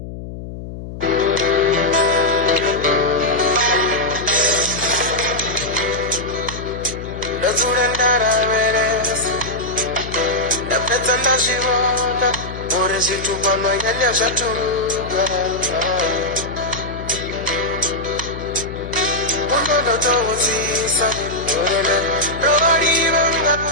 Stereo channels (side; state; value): left; noise; hum, 10 dB below the sound